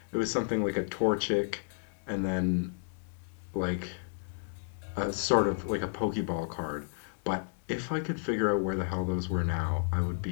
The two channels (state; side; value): silent; right; digital silence